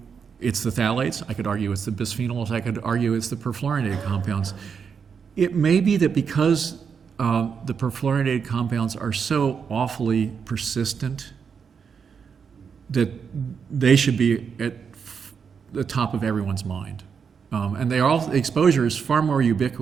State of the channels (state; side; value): quieter; left; 6.4 dB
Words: it's the phthalates, I could argue it's the bisphenols, I could argue it's the perfluorinated compounds. It may be that because the perfluorinated compounds are so awfully persistent that they should be at the top of everyone's mind. And exposure is far more